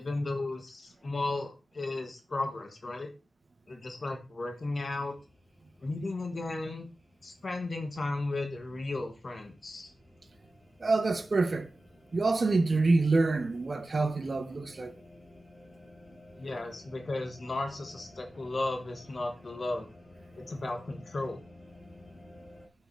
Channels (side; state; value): both; normal; correlation 0.94